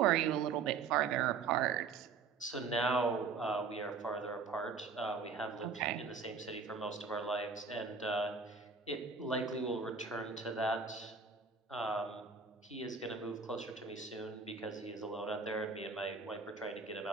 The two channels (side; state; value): left; quieter; 5.0 dB